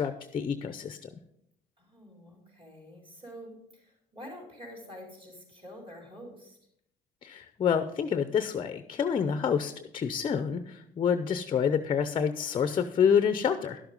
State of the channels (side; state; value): right; quieter; 6.9 dB